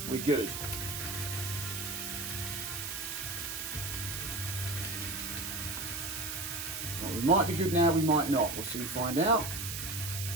we're good. Well, we might be good now, we might not. We'll soon find out.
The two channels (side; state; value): right; noise; hiss, 5 dB below the sound